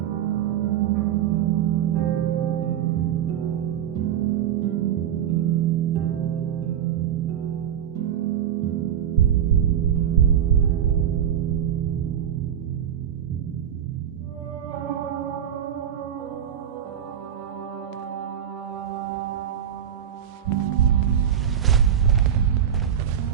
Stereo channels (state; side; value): quieter; left; 9.7 dB